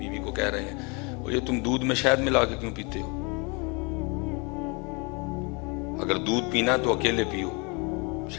کو کہہ رہے ہیں وہ یہ تم دودھ میں شہد ملا کے کیوں پیتے ہو؟ اگر دودھ پینا تو اکیلے پیو,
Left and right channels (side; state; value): right; quieter; 30.7 dB